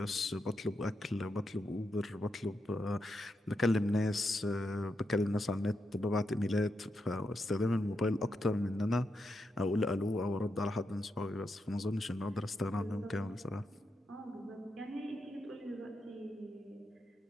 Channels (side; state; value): both; normal; correlation 0.84